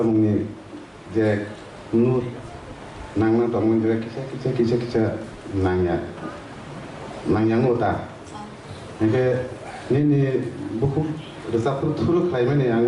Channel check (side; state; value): both; identical; correlation 1.00